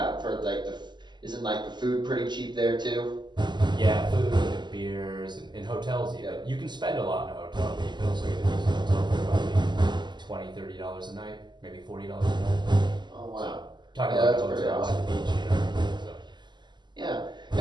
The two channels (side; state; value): left; late; 0.21 ms